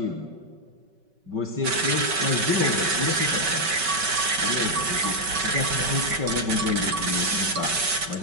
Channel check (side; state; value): left; late; 5.3 ms